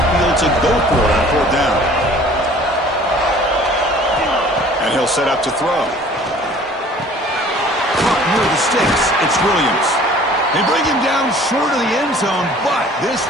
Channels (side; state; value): both; normal; correlation 0.50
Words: field to go for it on 4th down. And he'll set up to throw. Caught near the sticks. It's Williams. They bring him down short of the end zone, but this